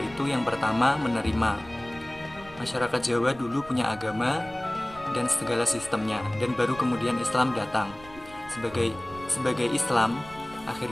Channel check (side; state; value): right; noise; rumble, 20 dB below the sound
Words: yang pertama, menerima. Masyarakat Jawa dulu punya agama dan segala sistemnya, dan baru kemudian Islam datang. Sebagai Islam,